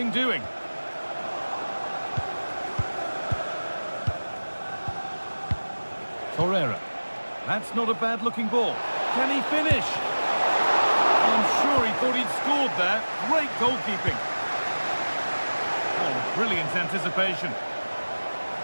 doing. Torreira. That's not a bad-looking ball. Can he finish? I'm sure he thought he'd scored there. Great goalkeeping. Oh, brilliant anticipation.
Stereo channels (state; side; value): inverted; both; correlation -1.00